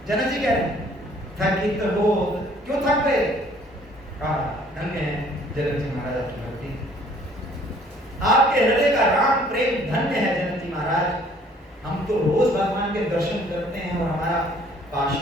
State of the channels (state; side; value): normal; both; correlation 0.58